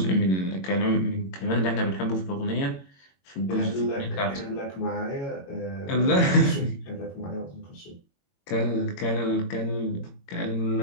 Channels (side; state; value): right; late; 22 ms